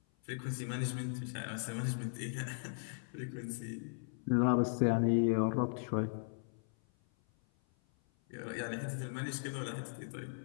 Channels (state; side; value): silent; right; 53 dB below the other